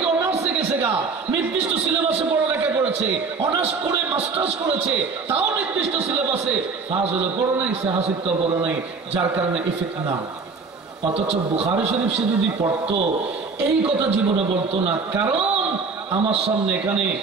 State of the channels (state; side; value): quieter; left; 4.6 dB